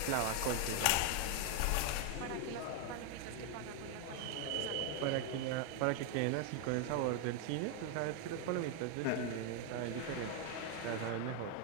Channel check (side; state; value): both; different; correlation 0.01